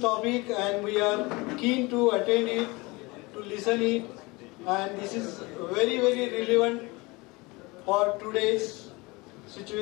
and we are keen to attend it, to listen it, and this is very relevant for today's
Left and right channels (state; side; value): quieter; right; 24.3 dB